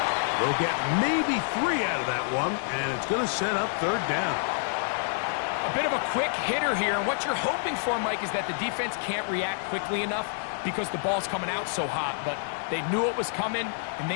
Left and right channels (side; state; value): right; silent; 59 dB below the other